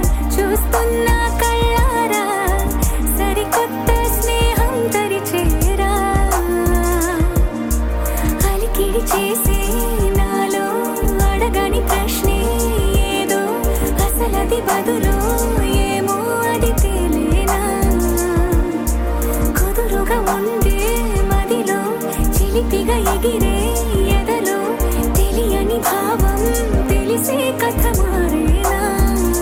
చూస్తున్నా కళ్ళారా సరికొత్త స్నేహం తరిచేరా అలికిడి చేసే నాలో అడగని ప్రశ్నే ఏదో అసలది బదులు ఏమో అది తేలేనా కుదురుగా ఉండే మదిలో చిలిపిగా ఎగిరే ఎదలో తెలియని భావం తెలిసే కథ మారేనా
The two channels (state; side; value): identical; both; correlation 1.00